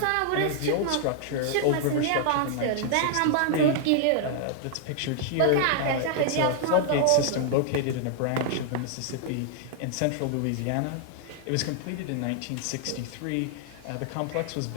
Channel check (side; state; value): both; different; correlation -0.01